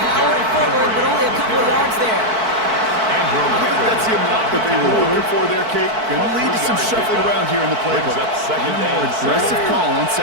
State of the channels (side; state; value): left; late; 4.5 ms